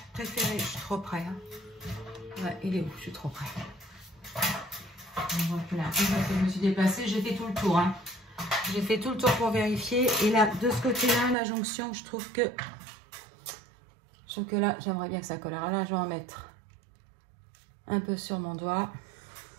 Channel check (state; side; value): drops out; left; at 11.4 s